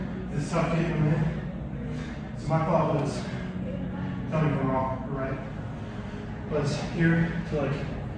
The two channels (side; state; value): both; identical; correlation 1.00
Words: is tough getting them in. So my thought was, tell me if I'm wrong, right? Was here to like